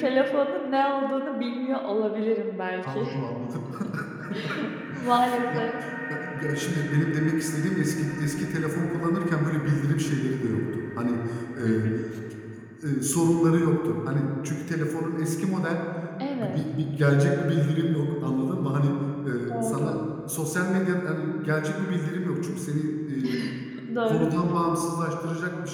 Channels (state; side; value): identical; both; correlation 1.00